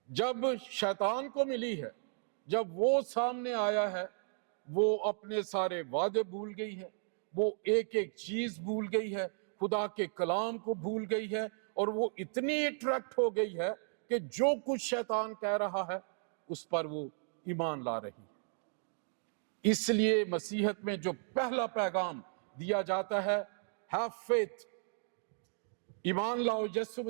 جب شیطان کو ملی ہے، جب وہ سامنے آیا ہے، وہ اپنے سارے وعدے بھول گئی ہے، وہ ایک ایک چیز بھول گئی ہے، خدا کے کلام کو بھول گئی ہے، اور وہ اتنی اٹریکٹ ہو گئی ہے کہ جو کچھ شیطان کہہ رہا ہے اس پر وہ ایمان لا رہی ہے. اس لیے مسیحیت میں جو پہلا پیغام دیا جاتا ہے، ہیو فیتھ، ایمان لاؤ. یسوع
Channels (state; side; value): silent; left; 54 dB below the other